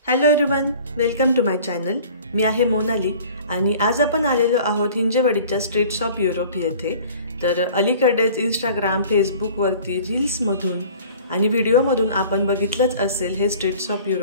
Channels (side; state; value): both; inverted; correlation -0.47